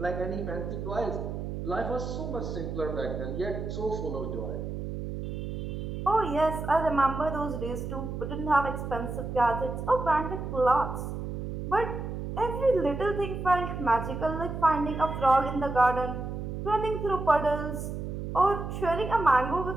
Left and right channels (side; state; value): right; noise; hum, 5 dB below the sound